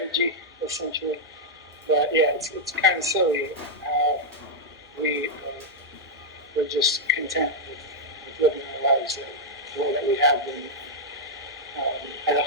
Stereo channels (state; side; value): normal; both; correlation -0.04